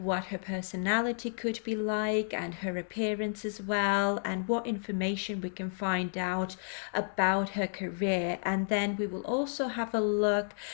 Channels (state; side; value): silent; right; digital silence